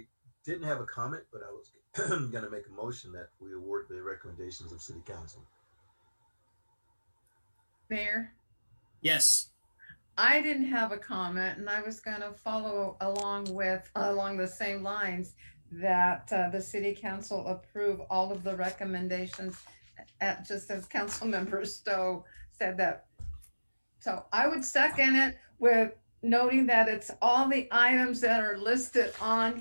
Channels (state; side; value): inverted; both; correlation -1.00